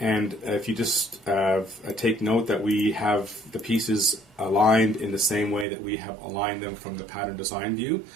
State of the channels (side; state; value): left; drops out; at 5.7 s